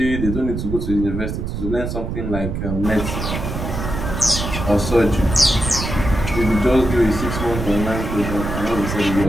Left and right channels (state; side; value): noise; right; rumble, 4 dB below the sound